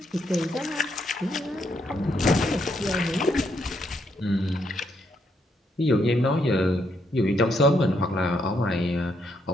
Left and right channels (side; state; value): both; normal; correlation 0.76